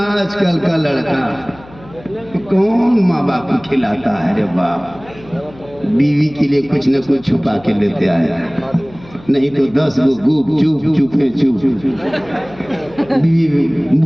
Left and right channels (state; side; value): noise; left; hum, 22 dB below the sound